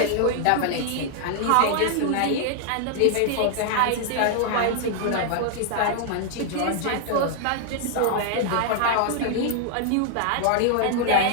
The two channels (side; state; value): both; different; correlation -0.01